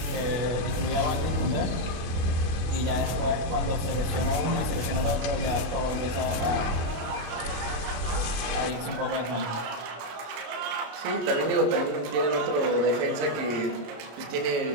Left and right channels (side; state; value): left; late; 25 ms